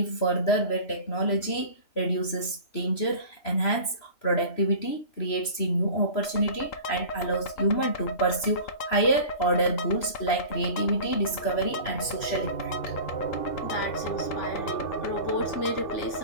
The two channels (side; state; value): right; late; 3.0 ms